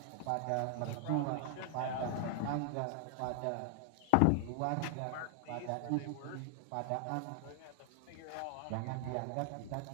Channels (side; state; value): both; different; correlation 0.00